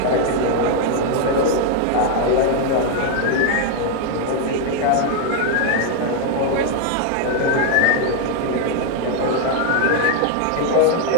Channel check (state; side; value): different; both; correlation 0.00